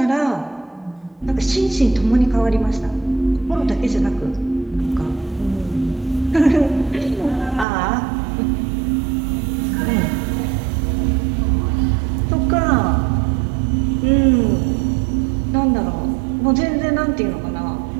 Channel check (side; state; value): left; drops out; at 7.7 s